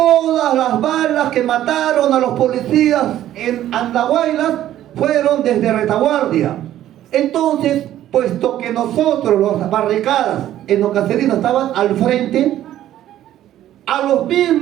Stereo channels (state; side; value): quieter; left; 12.6 dB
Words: las balas que mataron a los policías en Andahuaylas fueron desde retaguardia. Entonces, puesto que nosotros, las barricadas en Ocacerina estaban al frente, a los